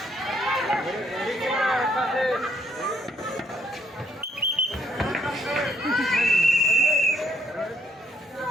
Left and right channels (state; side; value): normal; both; correlation 0.68